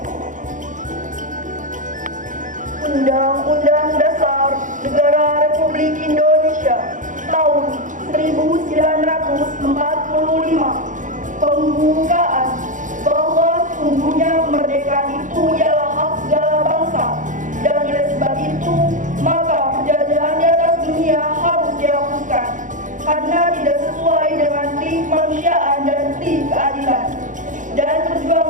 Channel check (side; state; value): left; late; 0.37 ms